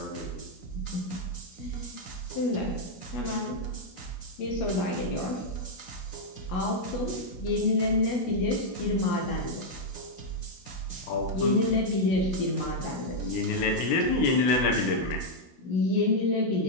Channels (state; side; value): late; right; 16 ms